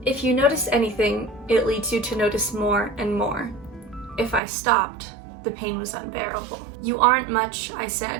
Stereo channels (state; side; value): drops out; left; at 4.4 s